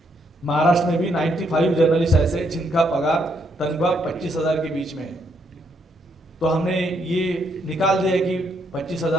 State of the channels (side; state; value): both; normal; correlation 0.74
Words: महाराष्ट्र में भी 95 जर्नलिस्ट ऐसे जिनका पगार तनख्वाह 25,000 के बीच में है। तो हमने ये निकाल दिया कि